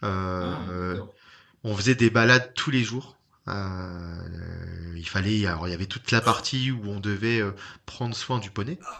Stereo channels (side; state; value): both; identical; correlation 1.00